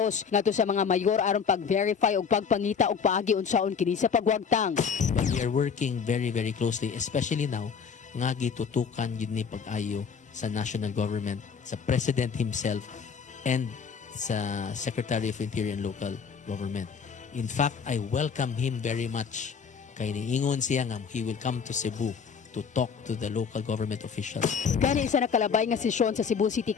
ngadto sa mga mayor aron pag-verify og pagpangita og paagi unsaon kini sa pagwagtang. But we are working very closely, especially now nga gitutukan yun ni pag-ayo sa national government, sa President himself, and sa Secretary of Interior and Local Government. In fact, I welcome him very much. Kay niingon siya nga he will come to Cebu to talk to the local government officials. Gani isa nakalabay nga sesyon sa Cebu City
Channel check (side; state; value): right; quieter; 6.3 dB